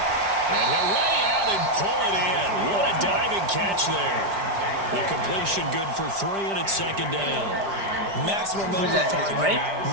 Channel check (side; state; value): left; late; 5.0 ms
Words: And he'll lay out and pull it in. What a diving catch there. The completion good for 3, and it's 2nd down. Maximum minimal target,